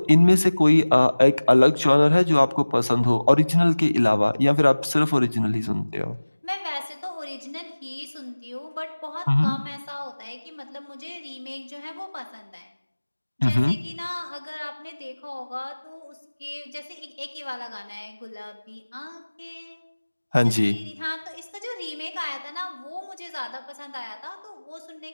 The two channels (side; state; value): both; inverted; correlation -1.00